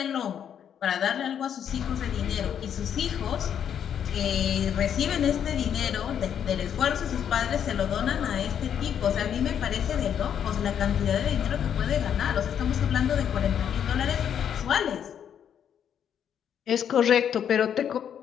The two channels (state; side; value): quieter; right; 8.8 dB